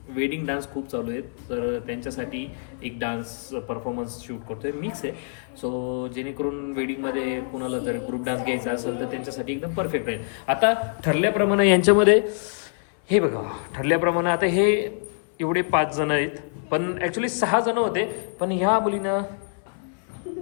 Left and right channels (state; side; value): silent; right; 62 dB below the other